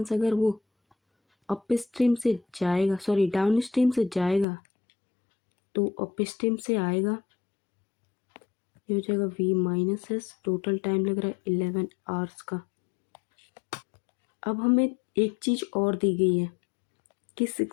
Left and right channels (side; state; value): right; drops out; at 4.5 s